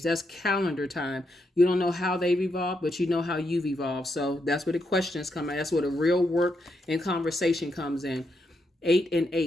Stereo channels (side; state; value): both; normal; correlation 0.81